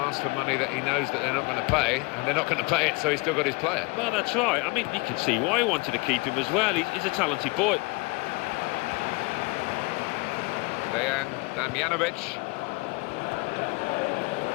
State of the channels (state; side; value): quieter; right; 27.0 dB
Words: for money that he knows that they're not going to pay, and they're not going to pay it, so he's still got his player. Well, that's right. I mean, you can see why he wanted to keep him as well. He's a talented boy. Dejan Damjanovic.